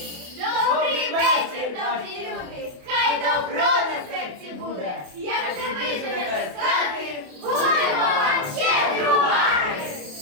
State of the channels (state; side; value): late; left; 28 ms